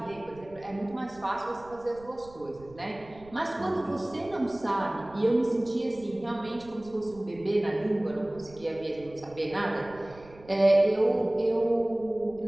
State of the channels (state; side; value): noise; right; rumble, 22 dB below the sound